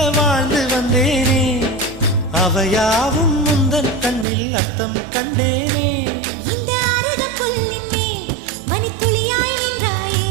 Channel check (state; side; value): drops out; left; at 4.2 s